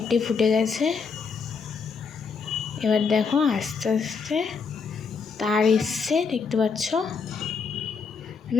ফুটে গেছে। এবার দেখো আস্তে আস্তে তার এসছে, দেখতে পাচ্ছ।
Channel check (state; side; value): quieter; right; 5.4 dB